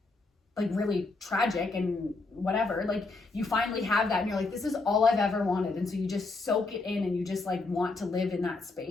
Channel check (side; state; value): right; quieter; 3.6 dB